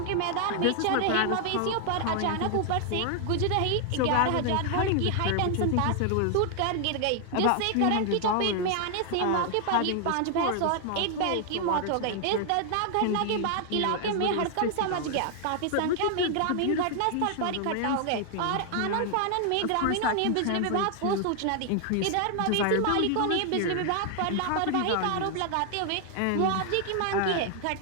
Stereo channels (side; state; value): both; different; correlation 0.00